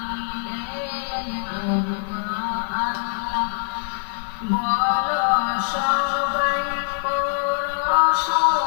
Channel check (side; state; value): right; silent; 63 dB below the other